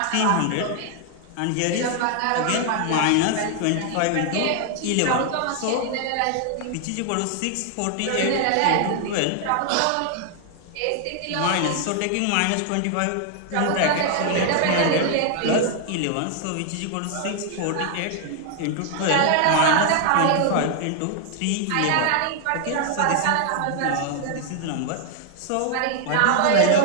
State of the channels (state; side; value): different; both; correlation 0.00